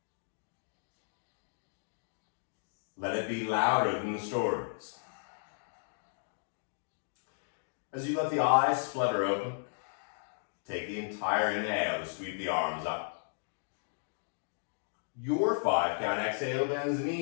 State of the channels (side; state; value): right; silent; digital silence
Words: Let it be louder than the stories. As you let the eyes flutter open, take the entire inhale to sweep the arms up. Your 5-count exhale bends the